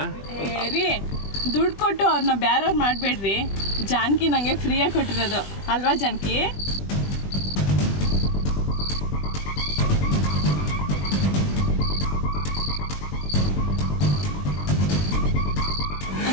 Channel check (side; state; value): right; late; 20 ms